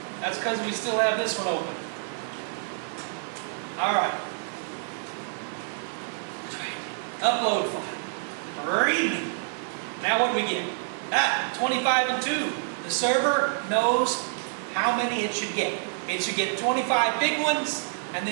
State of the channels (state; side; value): silent; left; digital silence